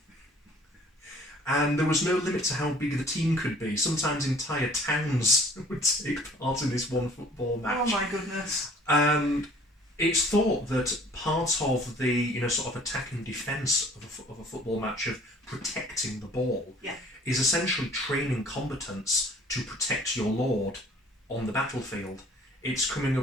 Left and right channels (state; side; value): normal; both; correlation 0.53